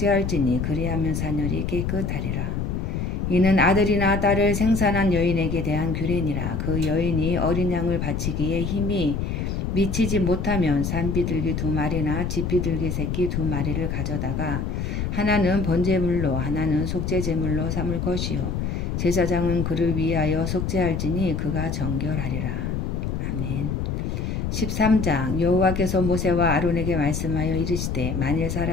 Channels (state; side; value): noise; left; rumble, 2 dB below the sound